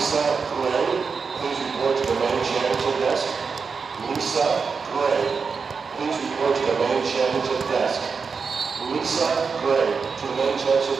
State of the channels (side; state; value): left; quieter; 5.3 dB